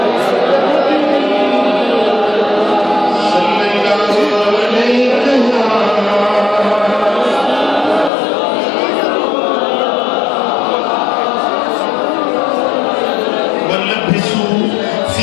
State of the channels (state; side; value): drops out; right; at 8.1 s